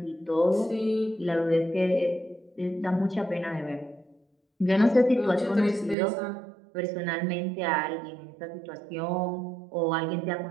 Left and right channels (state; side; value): drops out; left; at 6.0 s